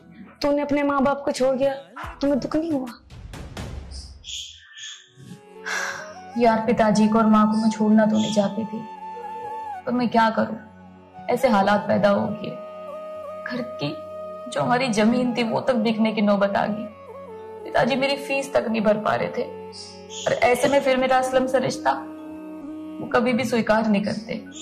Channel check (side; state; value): both; identical; correlation 1.00